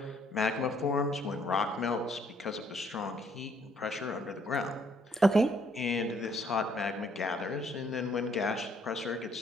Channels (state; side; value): normal; both; correlation 0.66